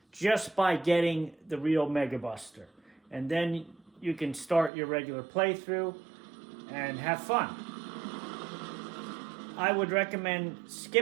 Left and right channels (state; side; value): drops out; left; at 4.7 s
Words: just by getting the real Mega Buster. And then you can start your regular playthrough and have fun. I would recommend